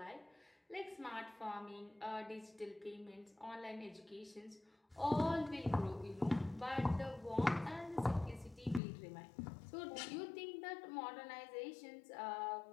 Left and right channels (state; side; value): drops out; right; at 8.8 s